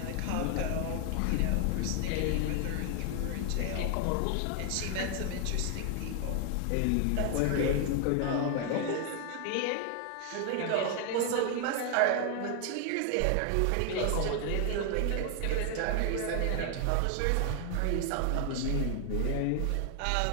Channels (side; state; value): both; different; correlation 0.00